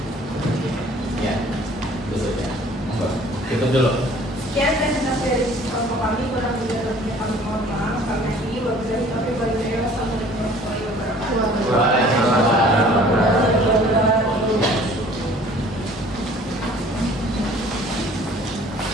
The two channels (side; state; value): both; normal; correlation 0.52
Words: Ya, tutup ya. Tutup dulu. Sekian